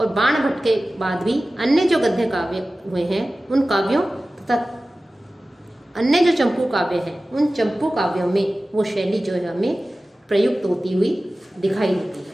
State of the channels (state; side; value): normal; both; correlation 0.96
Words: बाण भट्ट के बाद भी अन्य जो गद्य काव्य हुए हैं, उन काव्यों तथा अन्य जो चंपू काव्य हैं, उन चंपू काव्यों में वो शैली जो है हमें प्रयुक्त होती हुई दिखाई देती है।